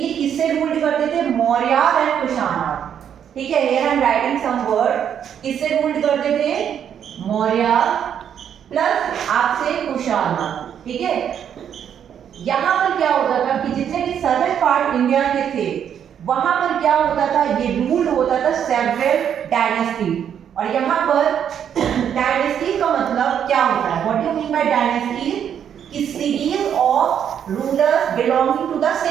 किससे रूल करते थे? मौर्य एंड कुशाना. ठीक है, here I am writing some word. किससे रूल करते थे? मौर्य प्लस आपसे कुशाना. ठीक है, यहाँ पर क्या होता था कि जितने भी सदर्न पार्ट इंडिया के थे वहां पर क्या होता था, ये रूल होता था सेवरल डायनेस्टी. और यहाँ पर डायनेस्टी का मतलब क्या होता है? What do you mean by dynasty? कि series of rulers belonging to the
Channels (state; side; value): quieter; left; 8.8 dB